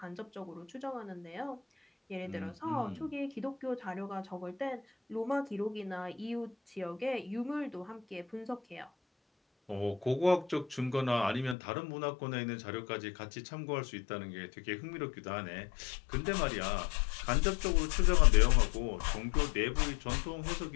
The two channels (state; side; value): drops out; right; at 11.6 s